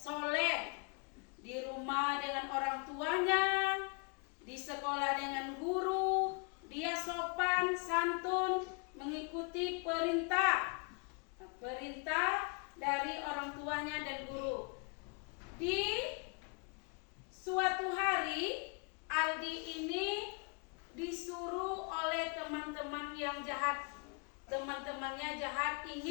di rumah dengan orang tuanya, di sekolah dengan guru, dia sopan, santun, mengikuti perintah dari orang tuanya dan guru. Di suatu hari Aldi ini disuruh oleh teman-teman yang jahat. Teman-temannya jahat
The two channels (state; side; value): quieter; right; 35.6 dB